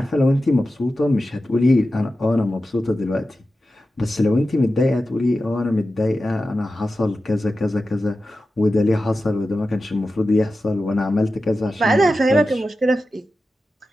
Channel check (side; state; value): both; normal; correlation 0.93